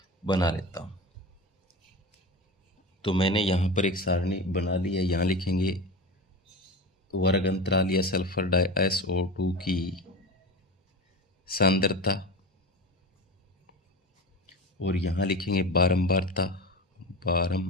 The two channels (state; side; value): normal; both; correlation 0.27